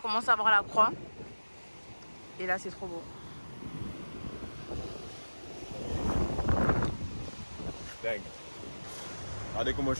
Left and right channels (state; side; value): inverted; both; correlation -1.00